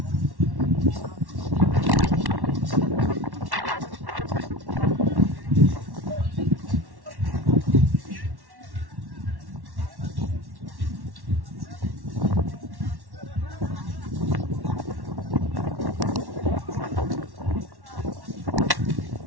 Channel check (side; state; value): left; late; 1.1 ms